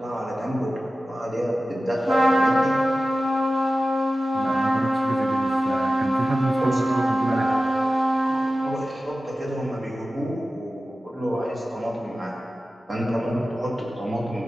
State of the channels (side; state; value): both; normal; correlation 0.95